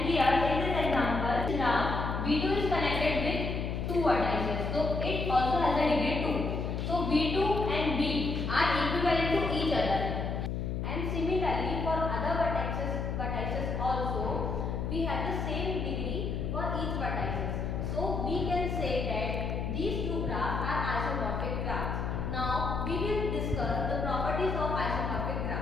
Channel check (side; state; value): left; noise; hum, 2 dB below the sound